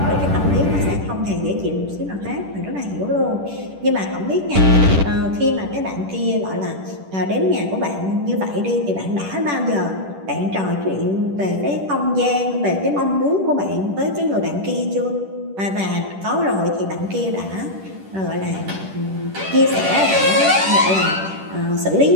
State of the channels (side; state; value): left; late; 10 ms